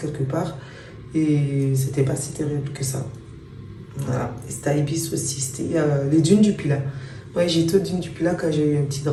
part. Et c'était pas si terrible que ça. Voilà. Et c'était à Ibis aussi. C'était les dunes du Pilat. Ouais, j'ai été aux dunes du Pilat quand j'ai eu un petit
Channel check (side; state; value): both; identical; correlation 1.00